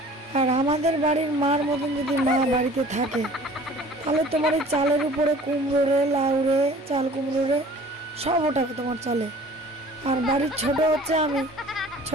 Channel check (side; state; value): both; normal; correlation 0.47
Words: আর আমাদের বাড়ির মার মতন যদি মা বাড়িতে থাকে তাহলে তোমার এই চালের উপরে কুমড়ো রে, লাউ রে, চাল কুমড়ো রে সব ওটাকে তোমার চলে। আর বাড়ির ছোট হচ্ছে আমি,